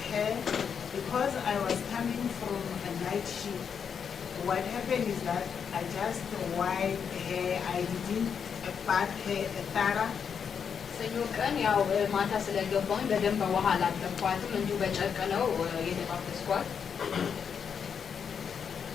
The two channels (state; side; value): quieter; right; 7.0 dB